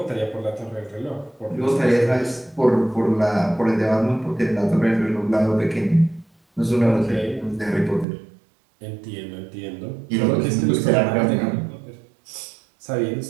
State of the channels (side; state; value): left; drops out; at 8.1 s